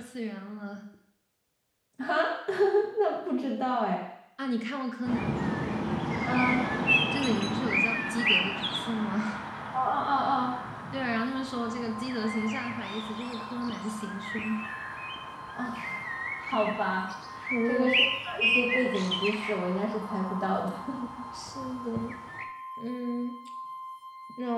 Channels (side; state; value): both; identical; correlation 1.00